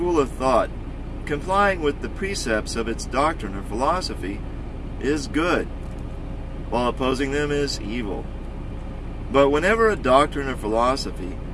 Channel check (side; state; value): both; identical; correlation 1.00